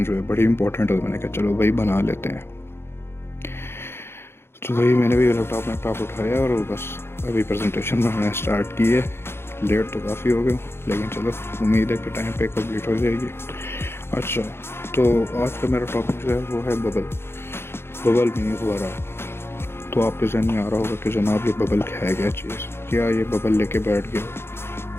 जो है बड़ी इंपॉर्टेंट है। तो मैंने कहा चलो वही बना लेते हैं। तो वही मैंने भी लैपटॉप उठाया और बस अभी प्रेजेंटेशन बनाना स्टार्ट की है। लेट तो काफ़ी हो गया हूँ, लेकिन चलो उम्मीद है कि टाइम पे कंप्लीट हो जाएगी। अच्छा, तो आज का मेरा टॉपिक जो है वो है बबल मीनिंग फुहारा। तो आपके जहन में आ रहा होगा कि जनाब ये बबल है क्या चीज़, क्या ये बबल लेके बैठ गया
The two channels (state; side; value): late; right; 0.12 ms